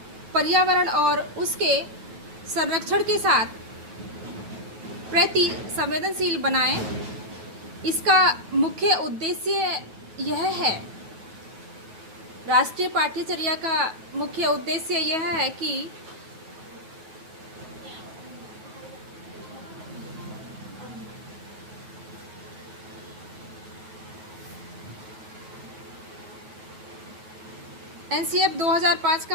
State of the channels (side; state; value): left; late; 9.1 ms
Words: पर्यावरण और उसके संरक्षण के साथ प्रति संवेदनशील बनाएं। इसका मुख्य उद्देश्य यह है, राष्ट्रीय पाठ्यचर्या का मुख्य उद्देश्य यह है कि NCF 2005